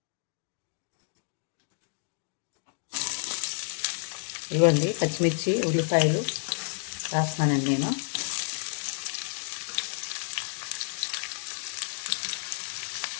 ఇవ్వండి పచ్చిమిర్చి, ఉల్లిపాయలు వేస్తున్నానండి నేను.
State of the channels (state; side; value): silent; right; digital silence